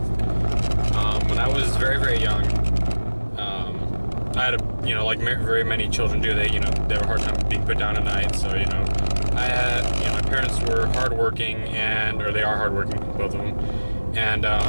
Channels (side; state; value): both; inverted; correlation -1.00